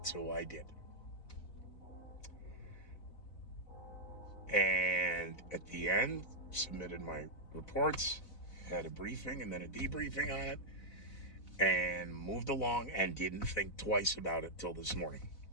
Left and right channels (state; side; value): late; right; 4.0 ms